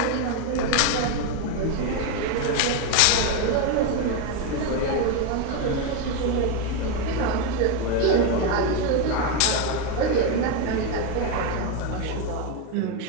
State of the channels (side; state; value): both; different; correlation 0.02